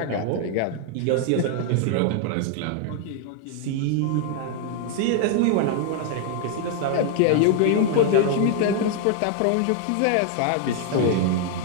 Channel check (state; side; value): different; both; correlation 0.00